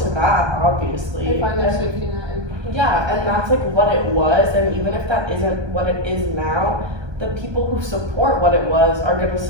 that, obviously. They find their And- safety net in. yeah, and that's like what it was, and even if that isn't what it is now, the people who support what it was are gonna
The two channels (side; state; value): left; late; 1.2 ms